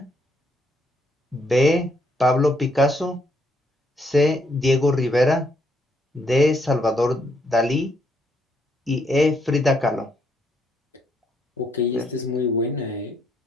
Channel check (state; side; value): normal; both; correlation 0.73